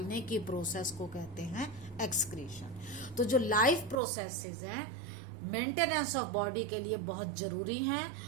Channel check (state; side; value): drops out; left; at 4.0 s